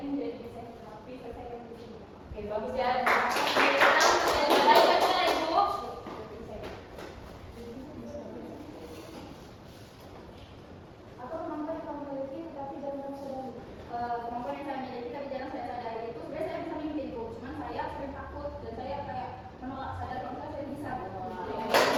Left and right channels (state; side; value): identical; both; correlation 1.00